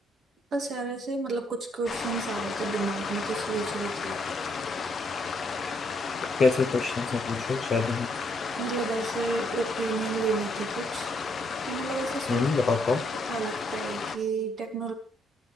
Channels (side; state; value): both; normal; correlation 0.73